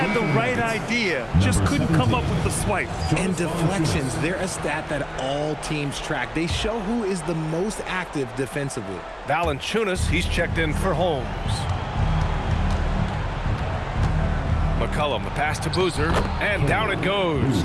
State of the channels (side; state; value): both; identical; correlation 1.00